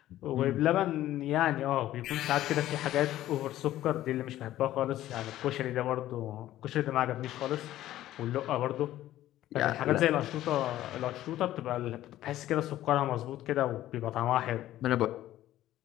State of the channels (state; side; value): quieter; right; 13.9 dB